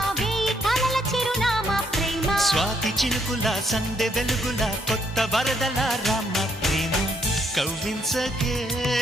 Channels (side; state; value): both; normal; correlation 0.72